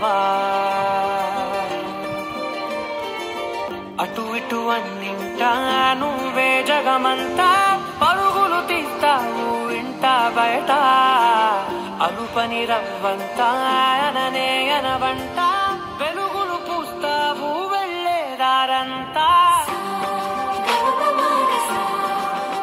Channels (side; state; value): both; identical; correlation 1.00